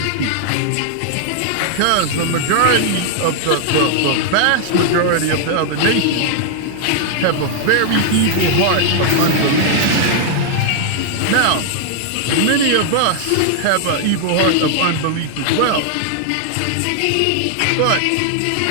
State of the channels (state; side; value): different; both; correlation 0.00